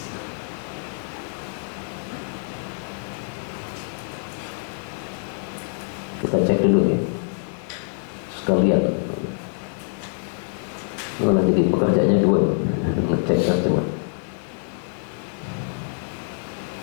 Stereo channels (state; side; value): silent; right; digital silence